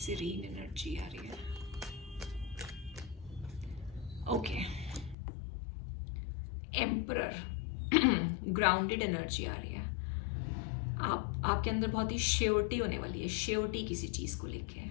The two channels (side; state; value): right; drops out; at 5.2 s